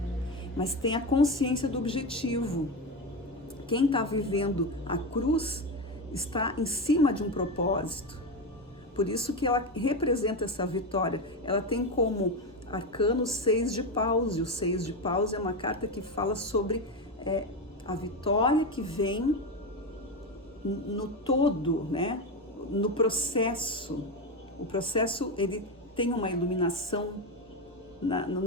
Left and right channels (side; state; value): both; normal; correlation 0.16